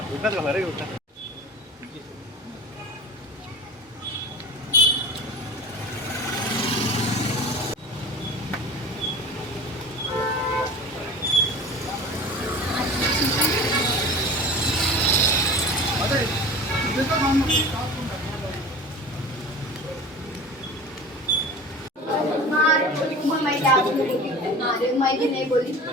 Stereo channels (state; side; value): normal; both; correlation 0.37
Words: उठनाच घाला रे उठना मैं नहीं बोली